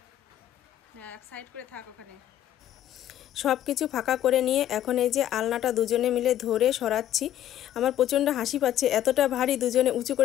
হ্যাঁ, এক সাইড করে থাক ওখানে। সব কিছু ফাঁকা করে নিয়ে এখন এই যে আলনাটা দুজনে মিলে ধরে সরাচ্ছি। আমার প্রচণ্ড হাসি পাচ্ছে, এতটা ভারী, দুজনে উঁচু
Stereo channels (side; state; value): right; quieter; 12.0 dB